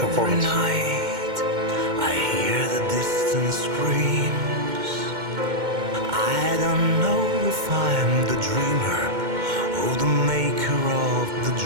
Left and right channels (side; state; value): left; late; 2.1 ms